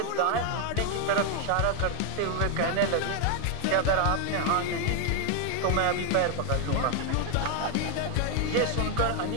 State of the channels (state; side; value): different; both; correlation 0.01